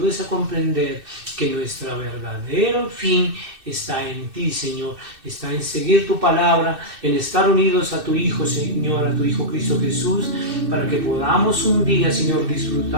a comprender que nuestro verdadero fin está en ti, Señor, está en seguir tu palabra, en estar unidos a tu Hijo, Señor, a tu Hijo Cristo Jesús, para que podamos un día, Señor,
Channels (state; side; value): late; left; 2.6 ms